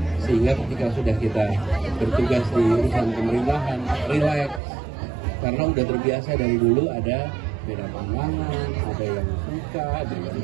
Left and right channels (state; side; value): drops out; left; at 4.6 s